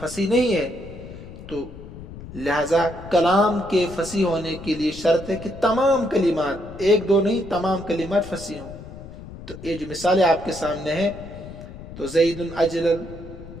فصیح نہیں ہے. تو لہذا کلام کے فصیح ہونے کے لیے شرط ہے کہ تمام کلمات، ایک دو نہیں، تمام کلمات فصیح ہوں. تو یہ جو مثالیں آپ کے سامنے ہیں، تو زید اجلل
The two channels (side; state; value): left; noise; rumble, 14 dB below the sound